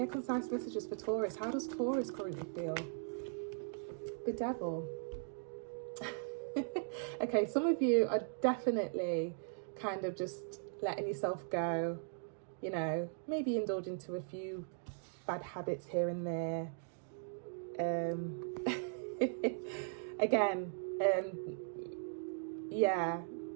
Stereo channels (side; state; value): left; silent; digital silence